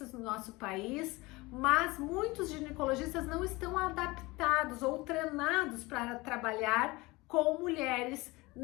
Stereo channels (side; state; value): right; quieter; 22.4 dB